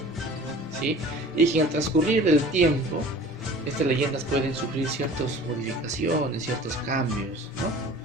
¿sí? Y que al transcurrir del tiempo, estas leyendas pueden sufrir ciertas modificaciones, ciertos cambios,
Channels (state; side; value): normal; both; correlation 0.44